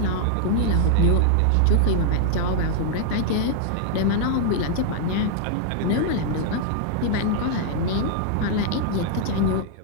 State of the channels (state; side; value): different; both; correlation -0.01